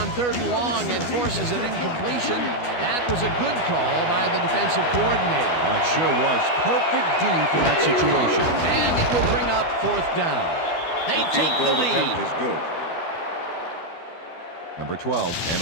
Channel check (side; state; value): right; late; 12 ms